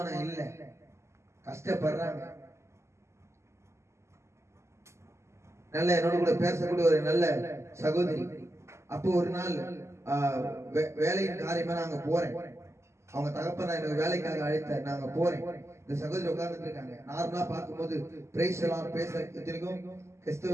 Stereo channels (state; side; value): late; left; 0.13 ms